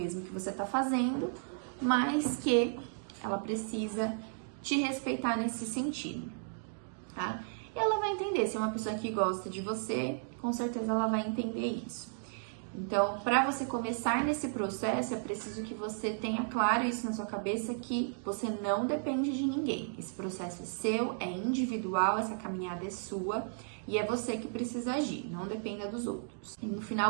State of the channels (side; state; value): left; silent; digital silence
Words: que você está fazendo, mas que ela precisa te respeitar nesse sentido, tá? E ela vai entender, se é uma pessoa que gosta de você, com certeza ela vai entender isso. Então, para você começar nesse processo, é preciso que você tenha claro isso na sua cabeça, que você não depende de ninguém. Esse processo é seu, é individual, essa caminhada é sua e é você que precisa agir, não dependa dos outros. E no